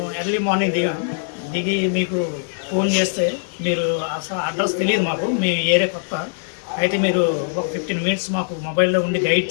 ఎర్లీ మార్నింగ్ దిగి మీకు ఫోన్ చేస్తే మీరు అసలు అడ్రస్ తెలియదు మాకు, మీ ఏరియా కొత్త అయితే మీరు ఒక 15 మినిట్స్ మాకు మొబైల్లో ఉండి గైడ్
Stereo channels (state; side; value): silent; right; digital silence